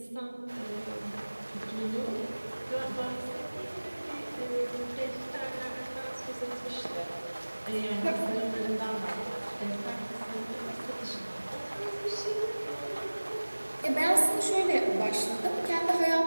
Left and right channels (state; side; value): inverted; both; correlation -1.00